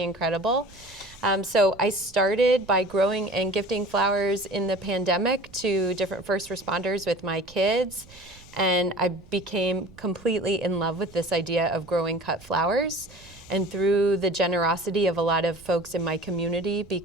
incredible. So I started by growing and gifting flowers in the pandemic to different first responders with my kids. And I became completely in love with this idea of growing cut flowers. And through the generosity of a lot of folks in my community,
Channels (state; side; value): noise; right; rumble, 23 dB below the sound